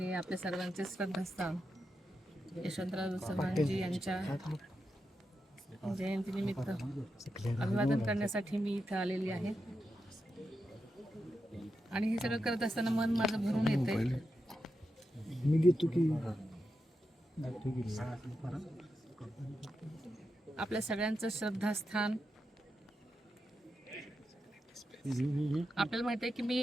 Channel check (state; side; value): normal; both; correlation 0.87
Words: आपल्या सर्वांचे श्रद्धास्थान यशवंतराव चव्हाणजी यांच्या जयंतीनिमित्त अभिवादन करण्यासाठी मी इथं आलेली आहे. आणि हे सगळं करत असताना मन माझं भरून येतंय. आपल्या सगळ्यांचं श्रद्धास्थान. आपल्याला माहिती आहे की